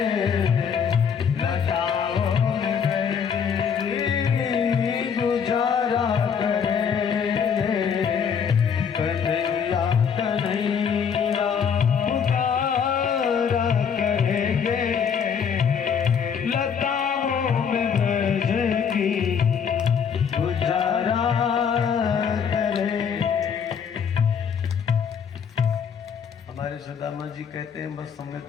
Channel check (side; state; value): right; quieter; 7.0 dB